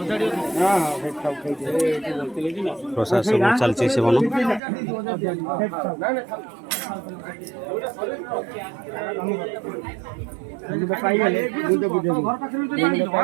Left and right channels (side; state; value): left; drops out; at 4.6 s